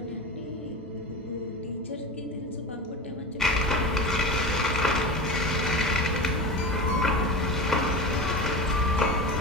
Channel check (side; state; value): both; normal; correlation 0.27